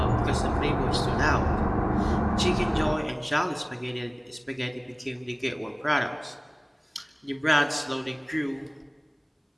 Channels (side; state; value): both; identical; correlation 1.00